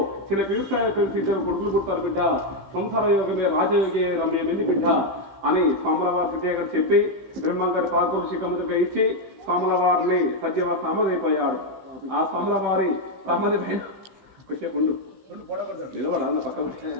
చిన్న వ్యవసాయ పెళ్లి కొడుకులు పుడతారు బిడ్డ సంసార యోగమే రాజయోగి రమ్యమైంది బిడ్డ అని స్వాములవారి సిద్ధయ్య గారు చెప్పి బ్రహ్మంగారి పాకోళ్ళు శిఖముగా ఇచ్చి స్వాములవారిని సత్యవారి సమాధైపోయాడు ఆ స్వాములవారి సమాధి కొద్దిసేపు ఉండు అప్పుడు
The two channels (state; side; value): late; left; 15 ms